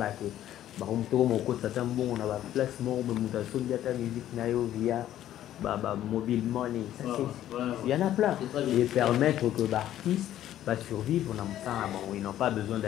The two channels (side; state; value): right; quieter; 12.3 dB